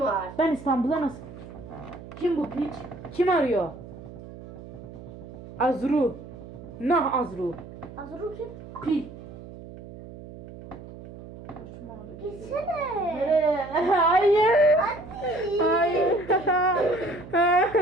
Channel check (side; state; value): right; noise; hum, 15 dB below the sound